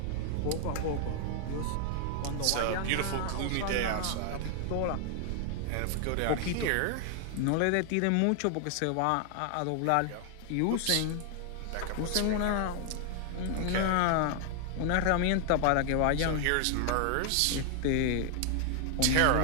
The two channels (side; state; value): both; different; correlation 0.00